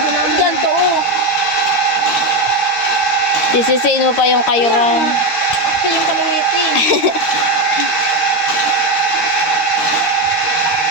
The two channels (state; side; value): late; right; 13 ms